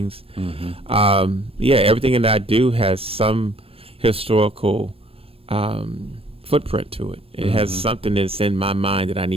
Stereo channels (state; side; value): late; left; 0.28 ms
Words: Everything that I do has some historical footprint to it. It has something that's in my mind that I